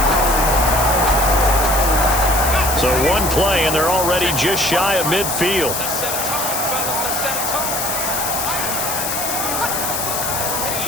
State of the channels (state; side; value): noise; left; hiss, 2 dB below the sound